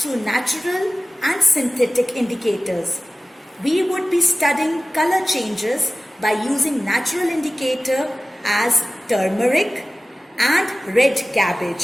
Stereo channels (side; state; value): both; normal; correlation 0.96